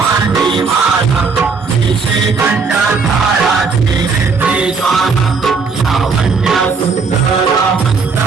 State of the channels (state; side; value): quieter; left; 4.9 dB